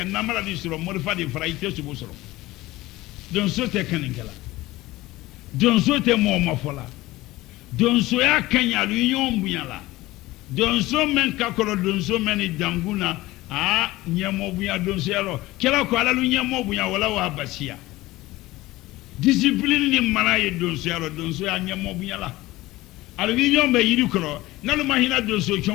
namala di suro morfa di fraite subo suro don so te kaningala don so te mo mafola don so ya kanya lu nyom bunyala don so men ka kolo don so men danguna nyemo bunya don so yalo kela ko ala lu nyemo bunya wala wa basia discipline ni mara ye don so yalo don so ya nyemo bunyala alu nyom be yiri kro nalu mahina donso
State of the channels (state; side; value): quieter; right; 18.5 dB